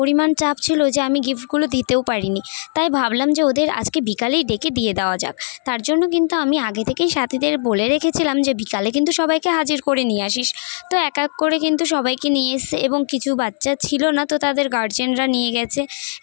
চাপ ছিল যে আমি গিফটগুলো দিতেও পারিনি। তাই ভাবলাম যে ওদের আজকে বিকালেই ডেকে দিয়ে দেওয়া যাক। তার জন্য কিন্তু আমি আগে থেকেই সাথীদের বলে রেখেছিলাম যে বিকালে কিন্তু সবাইকে হাজির করে নিয়ে আসিস। তো এক এক করে কিন্তু সবাইকে নিয়ে এসছে এবং কিছু বাচ্চা ছিল না তো তাদের গার্জেনরা নিয়ে গেছে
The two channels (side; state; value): right; silent; 64 dB below the other